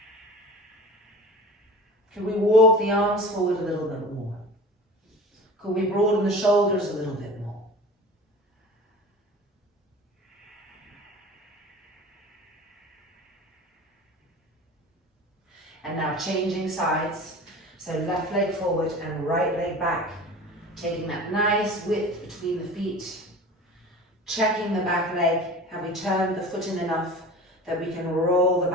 Can we walk the arms forward a little bit more? Could we broaden the shoulders a little bit more? And now changing sides. So left leg forward and right leg back. Taking that nice width between the feet. Checking the back leg. Have we turned the foot in enough that we can roll the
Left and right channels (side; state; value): both; normal; correlation 0.38